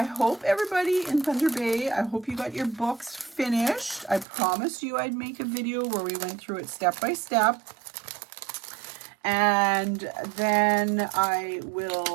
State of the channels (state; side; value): drops out; left; at 4.2 s